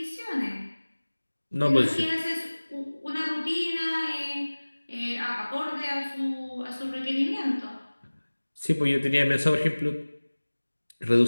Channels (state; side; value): inverted; both; correlation -1.00